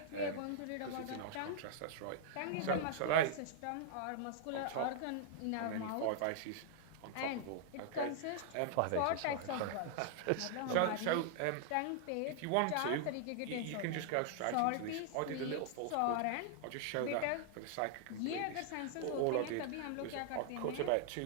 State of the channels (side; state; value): both; different; correlation -0.01